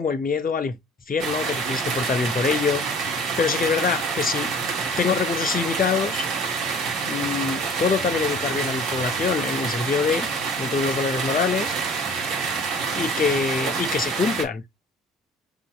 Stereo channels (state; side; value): normal; both; correlation 0.47